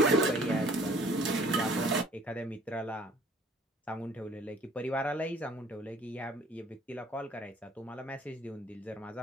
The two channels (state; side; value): normal; both; correlation 0.54